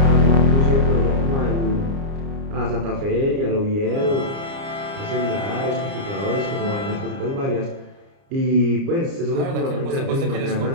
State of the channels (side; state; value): left; late; 30 ms